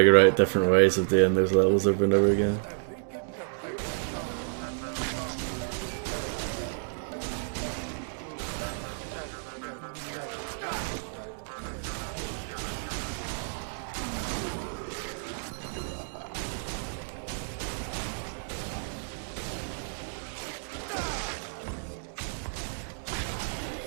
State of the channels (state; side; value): silent; left; digital silence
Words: out different ways of doing those levels over and over again.